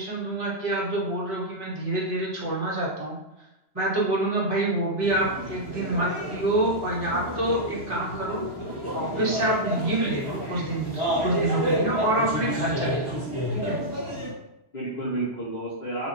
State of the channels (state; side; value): late; right; 3.0 ms